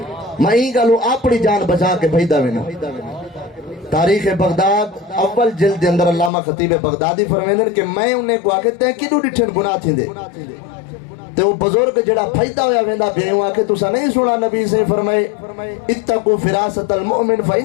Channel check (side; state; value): right; drops out; at 6.3 s